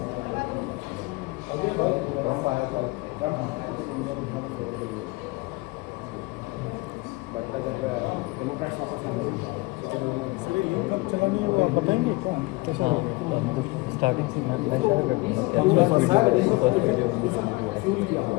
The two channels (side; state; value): right; quieter; 23.3 dB